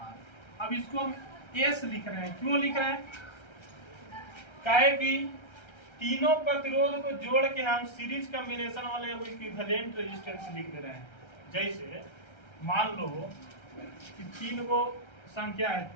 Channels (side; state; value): right; late; 1.3 ms